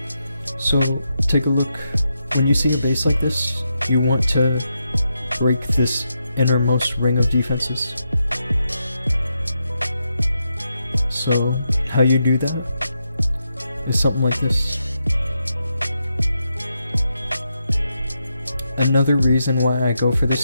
So, take a look. When you see a base like this, you want to break this innermost ring of defenses. So, how you do that is something like this. Another reason why I go for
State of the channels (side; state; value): both; inverted; correlation -0.84